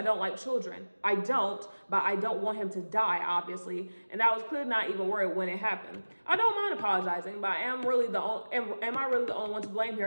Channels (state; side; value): inverted; both; correlation -1.00